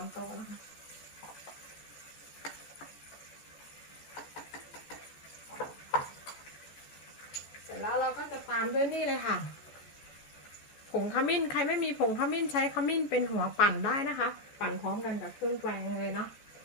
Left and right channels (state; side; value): late; right; 14 ms